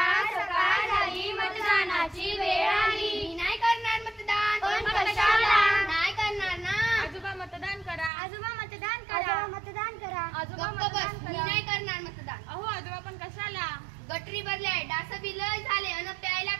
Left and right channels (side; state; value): left; drops out; at 8.1 s